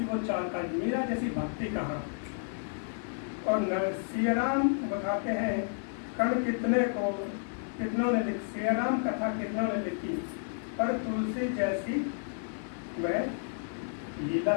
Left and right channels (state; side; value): silent; right; digital silence